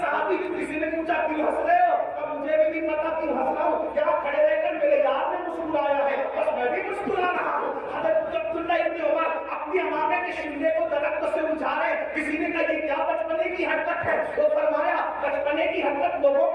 کسی نے پوچھا کیوں ہنس رہے ہو؟ تو مجھے بھی نہیں پتا کیوں ہنس رہا ہوں, کیا کھڑے رہ کر میرے یار نے مسکرایا ہے بس میں بھی مسکرا رہا ہوں. حضرت عبداللہ ابن عمر اپنی امامے کے شملے کو درخت سے اجھارے. کسی نے کہا یہ کیا بچپنے کی حرکت ہے؟ وہ فرمایا بچپنے کی حرکت لوگوں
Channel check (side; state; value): both; identical; correlation 1.00